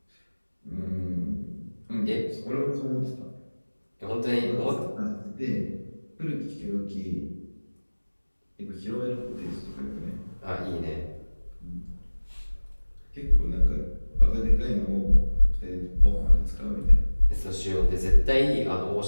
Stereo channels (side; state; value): both; inverted; correlation -1.00